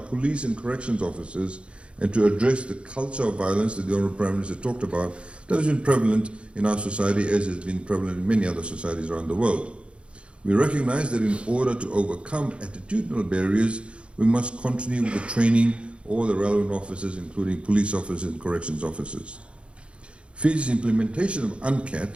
and corrections officers and to address the culture of violence that the Honourable Prime Minister talked about that has been prevalent in our society as has been prevalent in many other societies around the world. We recognize that in order to overcome attitudinal barriers, we must continue with the training all the relevant officers, including police officers and corrections officers. Fiji's implementation of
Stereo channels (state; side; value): late; left; 0.058 ms